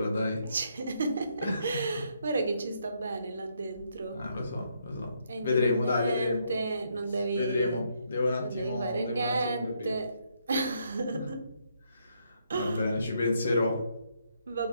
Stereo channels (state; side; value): inverted; both; correlation -0.74